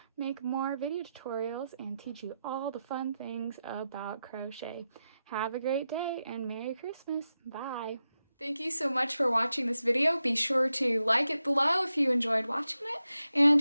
make more video tutorials and teach you all the fun things about crochet. Have a great day and Merry Christmas. Bye. Thank you so much for watching this video. Be sure to like it below if you enjoyed watching it,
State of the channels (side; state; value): both; inverted; correlation -0.89